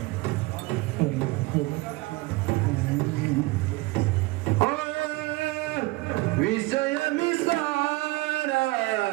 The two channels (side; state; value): left; quieter; 21.7 dB